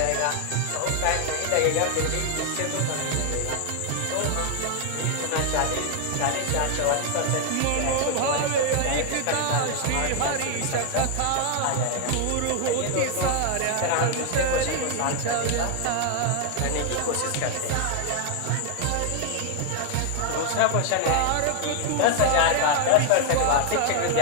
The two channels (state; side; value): different; both; correlation 0.00